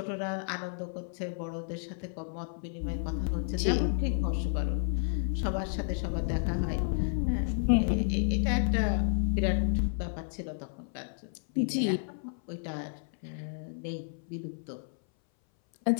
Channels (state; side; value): silent; right; 57 dB below the other